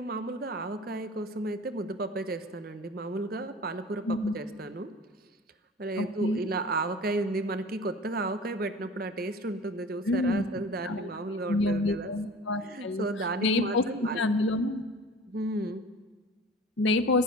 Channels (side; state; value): both; normal; correlation 0.41